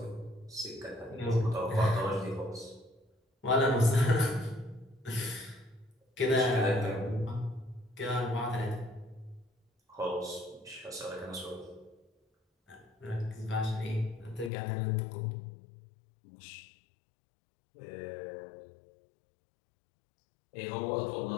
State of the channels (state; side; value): drops out; right; at 14.5 s